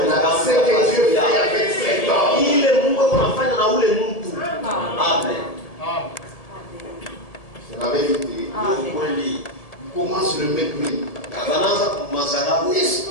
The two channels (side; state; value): right; late; 1.7 ms